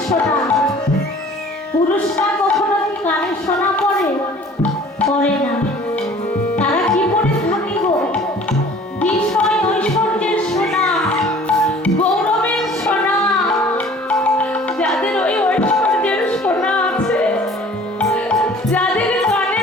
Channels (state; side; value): normal; both; correlation 0.49